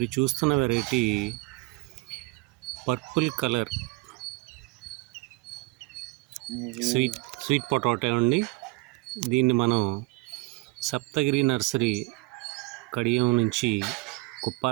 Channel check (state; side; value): quieter; left; 24.5 dB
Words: చూస్తున్న variety purple colour sweet potato అండి. దీన్ని మనం సప్తగిరి నర్సరీ కడియం నుంచి